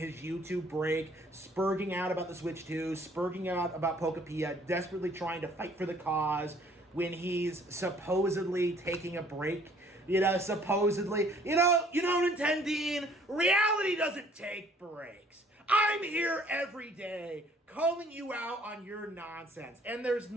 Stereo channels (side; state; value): both; normal; correlation 0.58